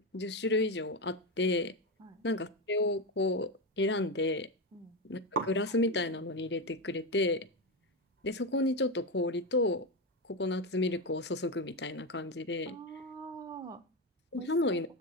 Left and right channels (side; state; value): both; normal; correlation 0.13